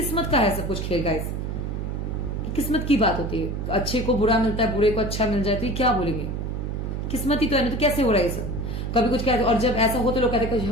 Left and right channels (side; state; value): right; noise; hum, 3 dB below the sound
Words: का है सब कुछ खेल गाइस। किस्मत की बात होती है, अच्छे को बुरा मिलता है, बुरे को अच्छा मिल जाए, तो ये क्या बोलेंगे? किस्मत ही तो है ना, तो कैसे हो रहा है ये सब? कभी कुछ कहते, और जब ऐसा हो तो लोग कहते हैं